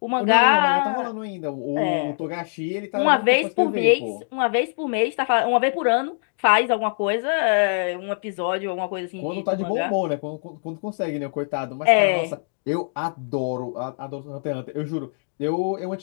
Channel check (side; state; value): right; silent; digital silence